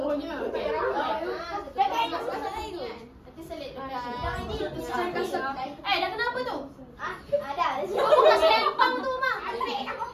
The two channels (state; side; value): identical; both; correlation 1.00